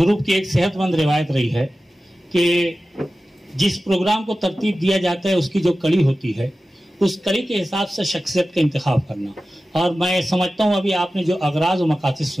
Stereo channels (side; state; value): both; normal; correlation 0.95